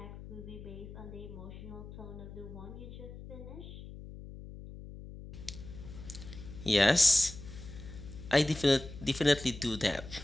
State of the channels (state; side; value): noise; left; hum, 13 dB below the sound